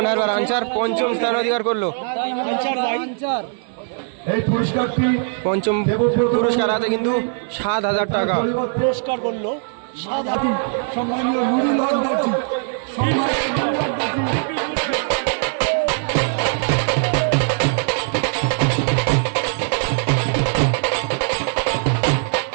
হারবার আনচার পঞ্চম স্থান অধিকার করলো। এই পুরস্কারটি পঞ্চম পুরস্কার আছে কিন্তু 7,000 টাকা। পুরস্কার করলো সম্মানীয় নুরুল হক দর্জি,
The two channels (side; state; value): left; silent; 56 dB below the other